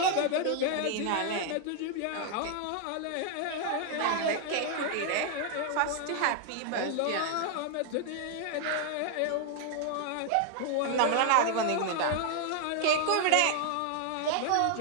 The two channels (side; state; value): both; different; correlation 0.00